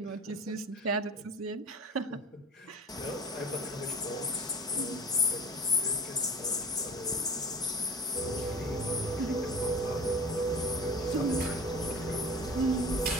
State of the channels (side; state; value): both; normal; correlation 0.39